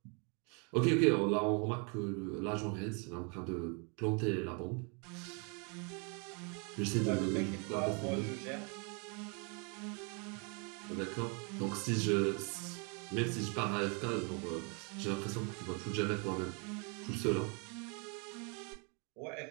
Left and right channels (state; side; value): quieter; left; 35.1 dB